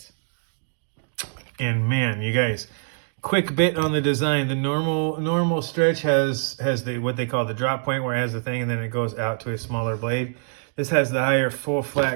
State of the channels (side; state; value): left; silent; digital silence